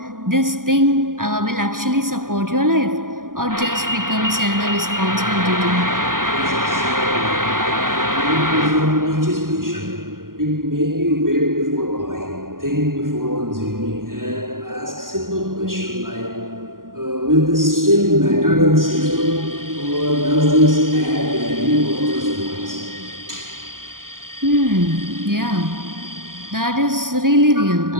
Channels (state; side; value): late; left; 0.91 ms